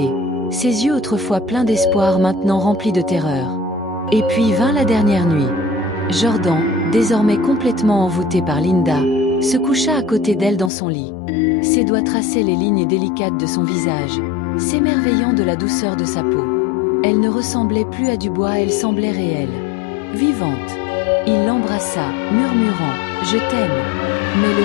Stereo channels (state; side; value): drops out; right; at 10.7 s